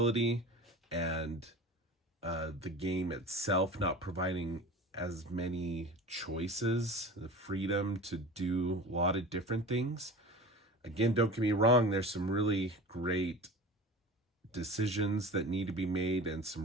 and the game itself not providing as many choices, the freedom to do a lot of different things. Again, don't get me wrong, there's some really great decisions that need to be made and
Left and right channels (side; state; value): both; normal; correlation 0.35